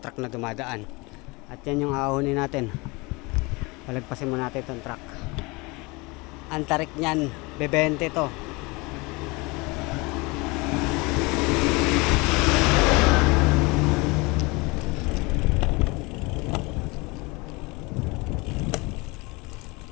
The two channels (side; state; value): right; quieter; 25.8 dB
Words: truck na dumadaan. At yan yung ahonin natin. Palagpasin mo natin itong truck. Ang tarik niyan, bebente to.